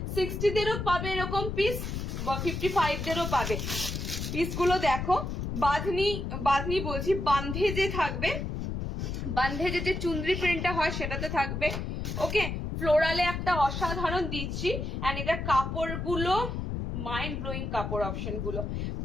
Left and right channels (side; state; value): left; noise; rumble, 4 dB below the sound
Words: 60 দেরও পাবে এরকম পিস, 55 দেরও পাবে। পিসগুলো দেখো, বাঁধনি বাঁধনি বলছি, বান্ধে যে থাকবে, বান্ধে যে চুনরি প্রিন্টটা হয় সেটাতে থাকবে, ওকে? ফ্লোরালে একটা অসাধারণ দিচ্ছি, এন্ড এটা কাপড়গুলো মাইন্ড ব্লোয়িং কাপড় অপশন গুলো।